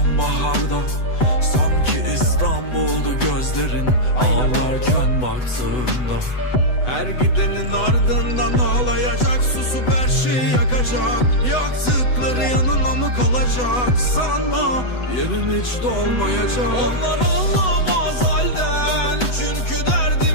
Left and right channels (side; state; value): right; late; 8.0 ms